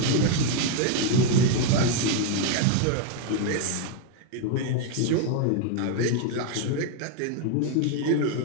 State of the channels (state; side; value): different; both; correlation 0.01